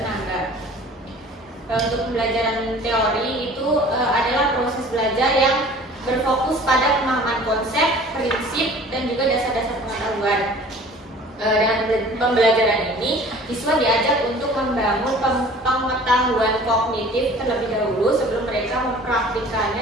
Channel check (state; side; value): normal; both; correlation 0.47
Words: Untuk pembelajaran teori itu adalah proses belajar yang berfokus pada pemahaman konsep, prinsip, dan juga dasar-dasar pengetahuan. Dengan pembelajaran ini, siswa diajak untuk membangun pengetahuan kognitif terlebih dahulu sebelum mereka